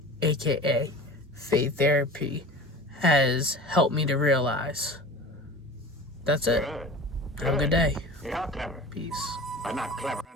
aka Faith Therapy, has helped me to realize. That's it. Have a good day. You're clever. Peace. But not clever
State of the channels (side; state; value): both; normal; correlation 0.37